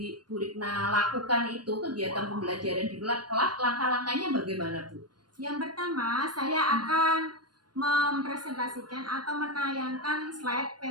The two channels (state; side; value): late; left; 0.70 ms